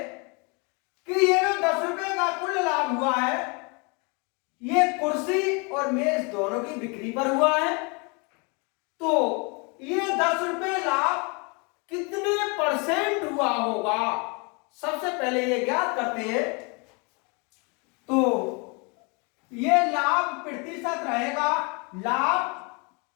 कि ये जो 10 रुपए का कुल लाभ हुआ है ये कुर्सी और मेज दोनों की बिक्री पर हुआ है, तो ये 10 रुपए लाभ कितने परसेंट हुआ होगा, सबसे पहले ये ज्ञात करते हैं। तो ये लाभ प्रतिशत रहेगा लाभ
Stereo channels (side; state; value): right; quieter; 31.7 dB